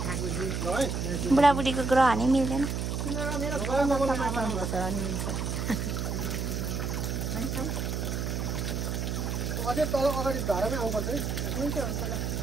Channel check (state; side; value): noise; right; hum, 2 dB below the sound